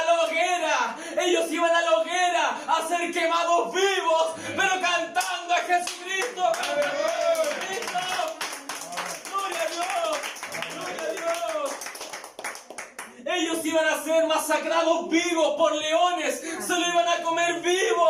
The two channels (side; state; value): both; identical; correlation 1.00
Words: la hoguera. Ellos iban a la hoguera a ser quemados vivos, pero cantando a Jesucristo. ¡Jesucristo! ¡Gloria a Dios! ¡Gloria a Dios! Ellos iban a ser masacrados vivos por leones, se lo iban a comer